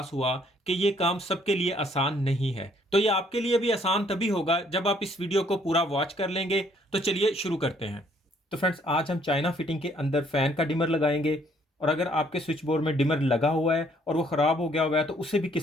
हुआ कि ये काम सबके लिए आसान नहीं है। तो ये आपके लिए भी आसान तभी होगा जब आप इस वीडियो को पूरा वॉच कर लेंगे। तो चलिए शुरू करते हैं। तो फ्रेंड्स, आज हम चाइना फिटिंग के अंदर फ़ैन का डिमर लगाएंगे। और अगर आपके स्विच बोर्ड में डिमर लगा हुआ है और वो ख़राब हो गया हुआ है तो उसे भी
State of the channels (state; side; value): normal; both; correlation 0.65